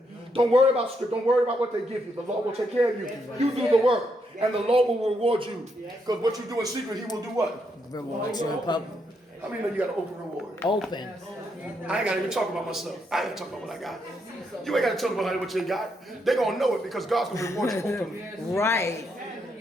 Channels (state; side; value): normal; both; correlation 0.78